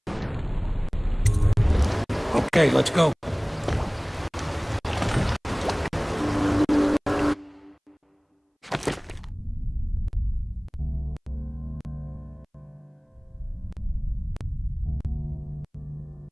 Okay, let's go.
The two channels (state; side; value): identical; both; correlation 1.00